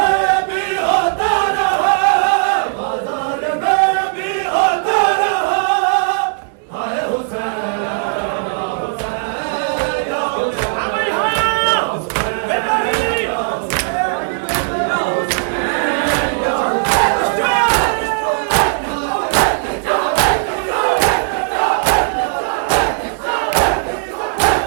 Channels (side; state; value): left; silent; digital silence